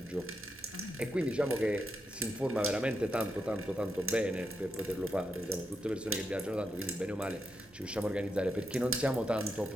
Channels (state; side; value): normal; both; correlation 0.84